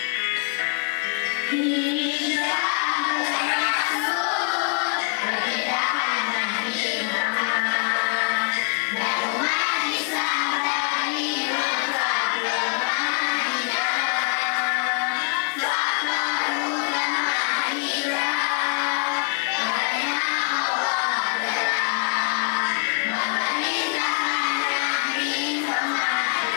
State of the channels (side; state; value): right; quieter; 37.3 dB